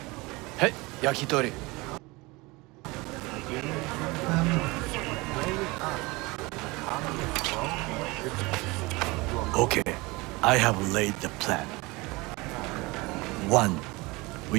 Hey, yakitori. Okay, I have laid the plan. 1.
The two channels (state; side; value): quieter; left; 23.7 dB